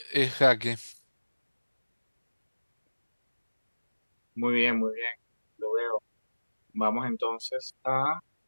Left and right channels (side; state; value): both; inverted; correlation -1.00